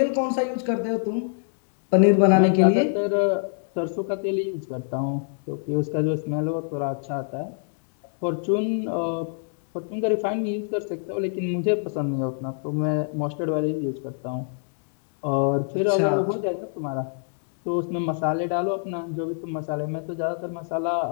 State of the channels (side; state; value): right; silent; digital silence